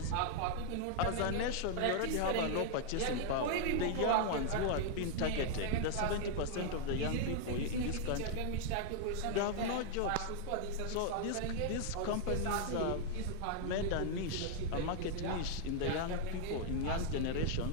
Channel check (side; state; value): both; different; correlation 0.00